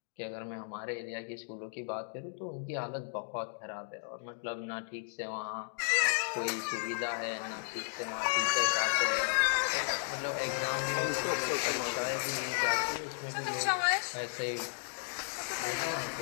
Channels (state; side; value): silent; right; digital silence